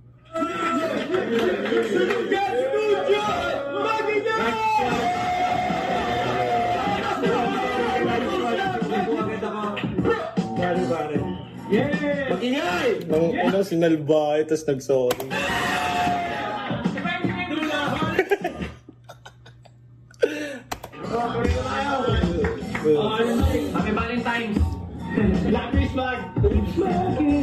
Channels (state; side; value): identical; both; correlation 1.00